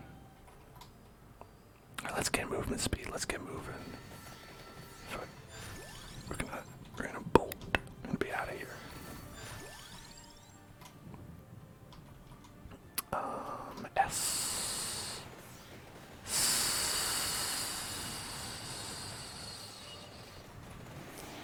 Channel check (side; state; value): both; identical; correlation 1.00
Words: Alright, let's get movement speed. Let's get moving. We're gonna bolt and be out of here. S.